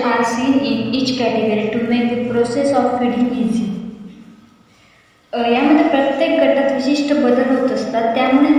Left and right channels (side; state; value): both; identical; correlation 1.00